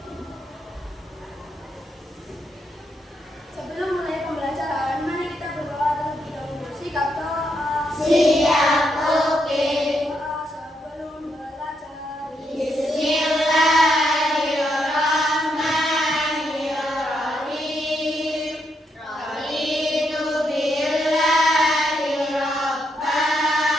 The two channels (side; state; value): both; normal; correlation 0.79